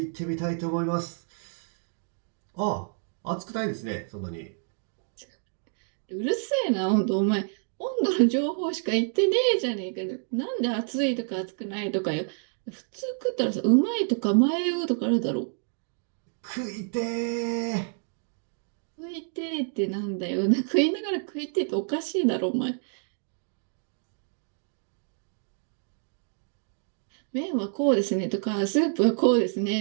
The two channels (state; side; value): silent; left; 59 dB below the other